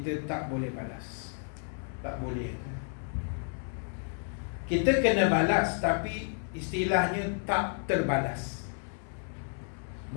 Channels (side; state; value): right; silent; 57 dB below the other